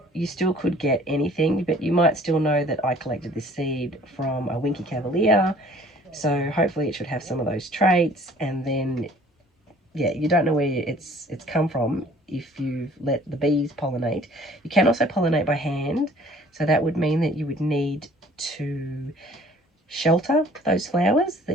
you still could get anything, but you might still know that I collected this seed from a winky cavalier. So hopefully it should have some of those traits, and then yeah, you don't know where it's come from if you've let the bees pollinate. You can also pollinate by hand, so that would mean that you would need to shelter those flowers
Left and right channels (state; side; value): normal; both; correlation 0.54